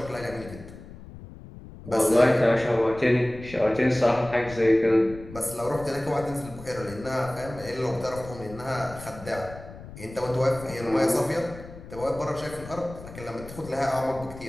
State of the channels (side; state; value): left; noise; rumble, 15 dB below the sound